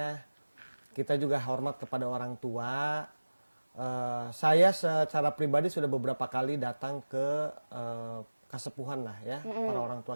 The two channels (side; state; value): both; inverted; correlation -1.00